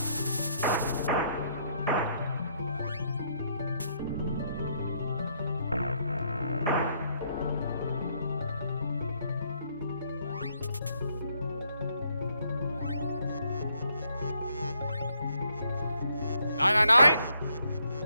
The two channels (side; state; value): both; inverted; correlation -0.71